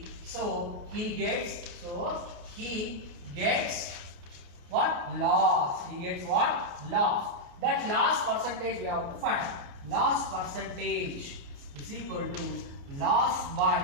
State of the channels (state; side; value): late; left; 29 ms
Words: So he gets what? Loss. He gets what? Loss. That loss percentage we have to find. Loss percentage is equal to loss by